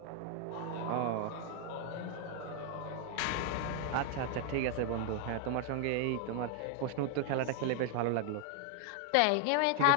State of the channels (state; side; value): different; both; correlation 0.00